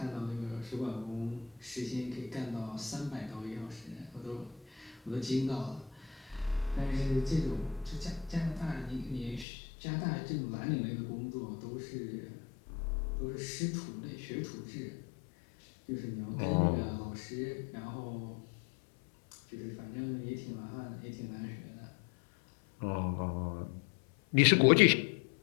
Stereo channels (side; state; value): right; drops out; at 9.5 s